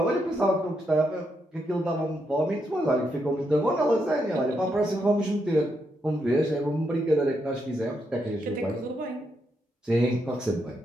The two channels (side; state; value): both; normal; correlation 0.80